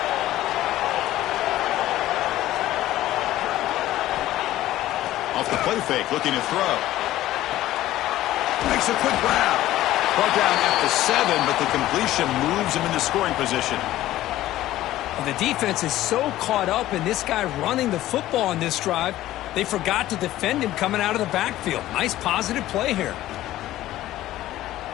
Off the play fake, looking to throw. Makes a quick grab. Brought down at the 7, but the completion moves him into scoring position. The defense is so caught up in this guy running the football on this drive, they forgot to defend him coming out of the backfield. Nice positive play here.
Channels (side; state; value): right; quieter; 14.8 dB